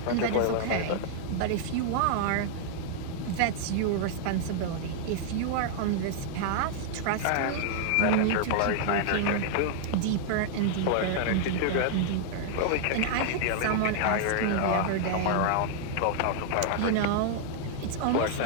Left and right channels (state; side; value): different; both; correlation -0.01